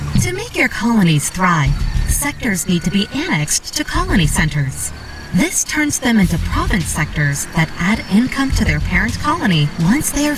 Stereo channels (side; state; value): both; identical; correlation 1.00